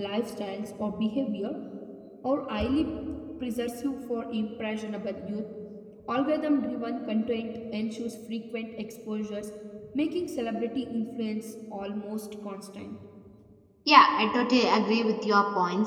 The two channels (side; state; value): both; identical; correlation 1.00